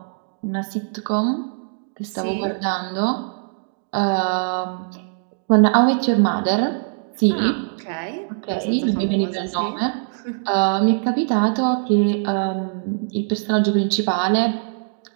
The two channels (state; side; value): silent; left; digital silence